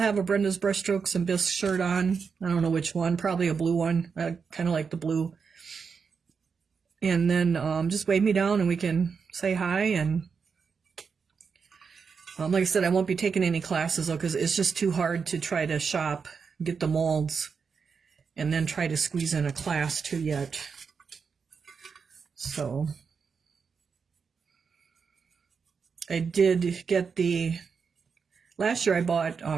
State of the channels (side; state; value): left; quieter; 5.7 dB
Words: a Brenda's Brushstrokes and Bisque shirt on. I don't know which one, probably a blue one. I kind of like the blue. And then just wave me down and we can say hi. And like I said, I won't be taking any classes though, because it's just too hard to try to shop, get the molds, and then try to squeeze in a class too yet. So I did get last year I bought